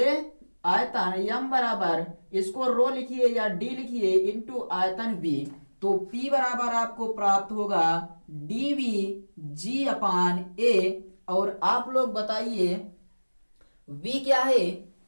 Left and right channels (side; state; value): both; inverted; correlation -1.00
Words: आयतन। यम बराबर इसको रो लिखिए या डी लिखिए इंटू आयतन v। तो P बराबर आपको प्राप्त होगा dv g अपान a। और आप लोग बताइए v क्या है?